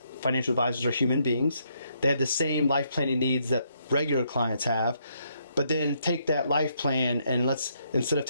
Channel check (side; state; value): both; inverted; correlation -0.74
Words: financial advisors are human beings. They have the same life planning needs that regular clients have, but then take that life plan and instead of